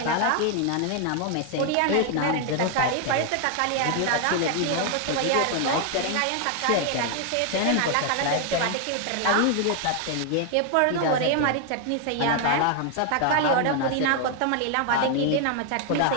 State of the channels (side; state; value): both; different; correlation 0.00